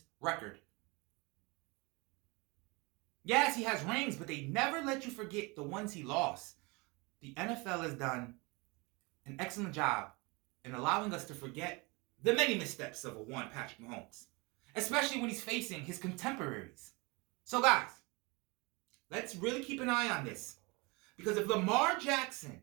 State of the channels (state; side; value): quieter; left; 26.9 dB